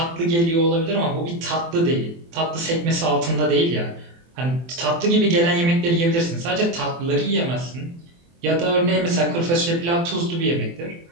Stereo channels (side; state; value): left; late; 24 ms